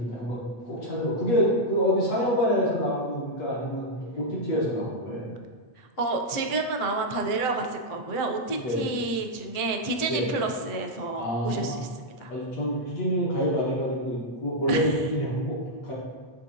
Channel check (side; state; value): right; late; 7.8 ms